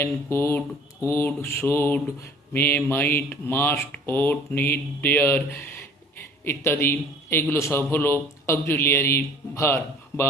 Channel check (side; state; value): both; normal; correlation 0.50